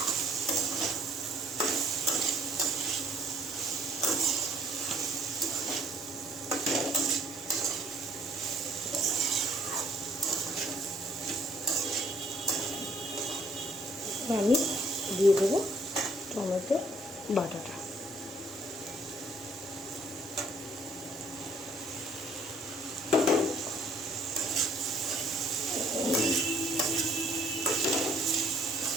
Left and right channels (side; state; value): both; normal; correlation 0.62